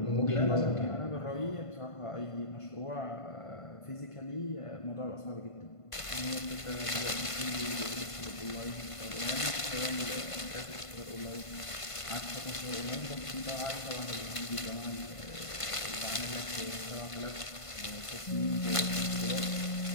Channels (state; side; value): late; right; 1.5 ms